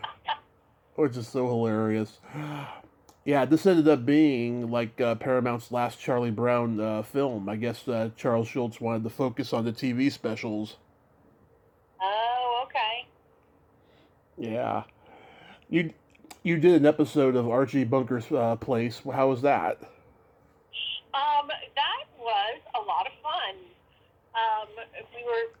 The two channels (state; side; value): identical; both; correlation 1.00